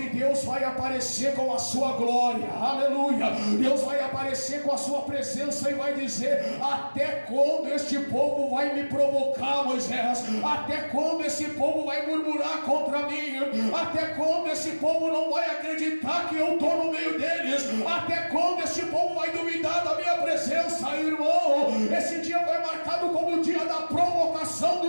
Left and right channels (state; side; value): inverted; both; correlation -1.00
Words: Deus vai aparecer com a sua glória. Aleluia. Deus vai aparecer com a sua presença e vai dizer: até quando este povo vai me provocar, Moisés? Até quando esse povo vai murmurar contra mim? Até quando esse povo não vai acreditar que eu estou no meio deles? Até quando este povo vai duvidar da minha presença, irmão? Esse dia foi marcado como o dia da provocação